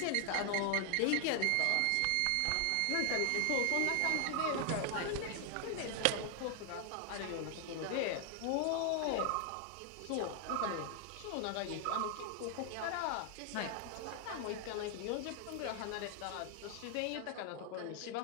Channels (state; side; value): different; both; correlation 0.00